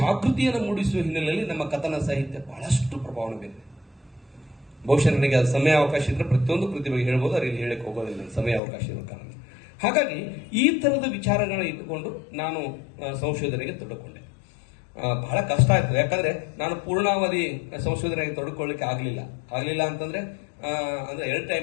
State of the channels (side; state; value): right; drops out; at 8.6 s